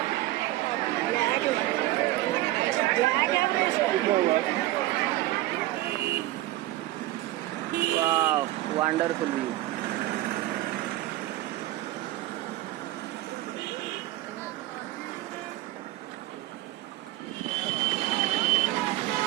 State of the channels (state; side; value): quieter; left; 16.9 dB